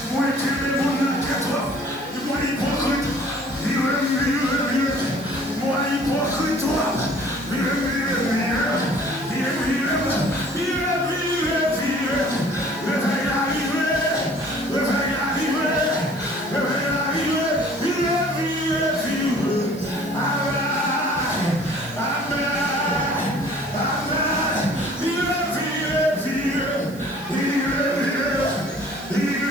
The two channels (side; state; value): right; noise; hiss, 21 dB below the sound